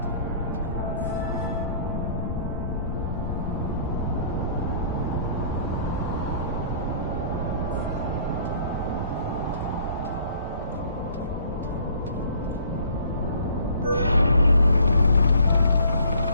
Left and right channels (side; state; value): both; inverted; correlation -0.56